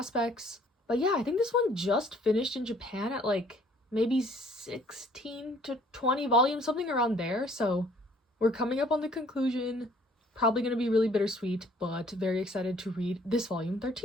But yeah, I think this one just finished in Japan at, maybe 16 to 20 volumes, something around there, so we're coming up on the conclusion. Probably gonna be really bittersweet, but very excited to read this volume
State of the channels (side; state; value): both; normal; correlation 0.59